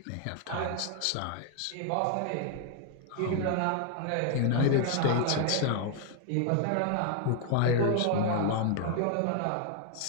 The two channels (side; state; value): both; different; correlation 0.00